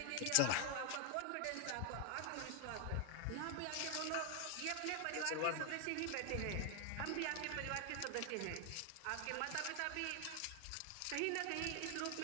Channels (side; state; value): both; different; correlation 0.00